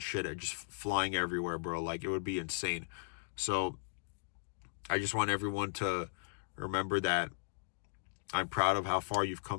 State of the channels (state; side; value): silent; right; digital silence